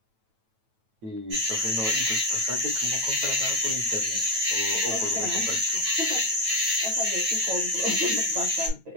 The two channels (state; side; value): late; left; 9.1 ms